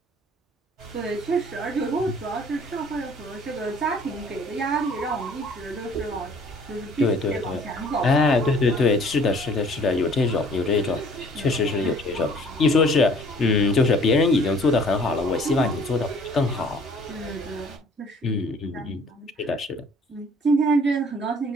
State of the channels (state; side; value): normal; both; correlation 0.55